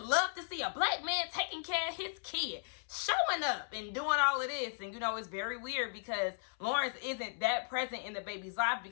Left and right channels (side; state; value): right; silent; 54 dB below the other